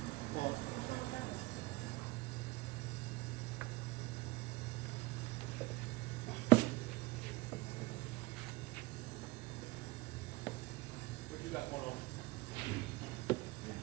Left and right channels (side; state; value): left; quieter; 21.6 dB